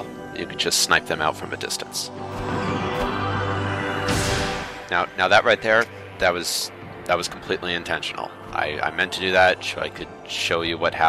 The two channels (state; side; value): identical; both; correlation 1.00